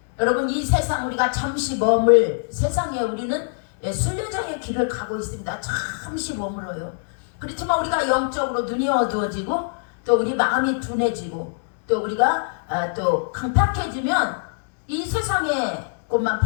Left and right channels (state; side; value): silent; right; digital silence